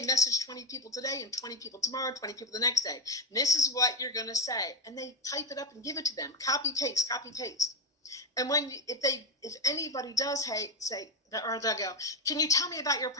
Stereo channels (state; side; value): normal; both; correlation 0.09